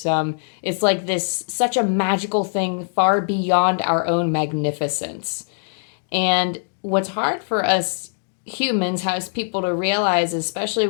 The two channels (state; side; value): silent; right; digital silence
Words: it's like this, such a magical thing far beyond our own magnificence. And what's hard for us humans, as people to realize, especially